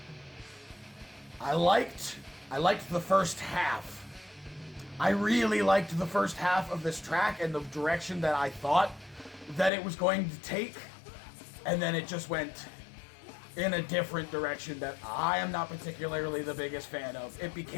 I liked the first half. I really liked the first half of this track and the direction that I thought that it was going to take. And then it just went in a different direction that I am not particularly the biggest fan of. It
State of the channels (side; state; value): right; drops out; at 9.7 s